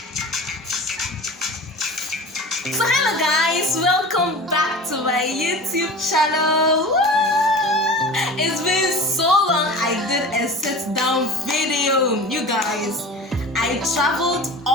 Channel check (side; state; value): both; normal; correlation 0.35